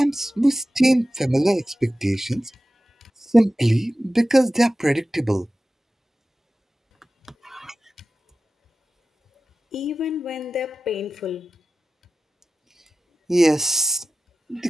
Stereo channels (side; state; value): both; normal; correlation 0.95